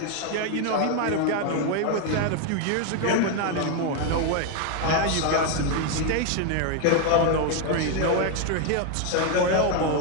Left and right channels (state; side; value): different; both; correlation 0.01